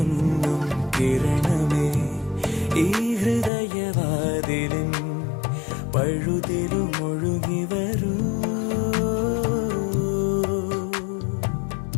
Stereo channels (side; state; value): right; drops out; at 3.5 s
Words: കിരണമേ ഈ ഹൃദയവാതിലിൻ പഴുതിലും ഒഴുകി വരൂ.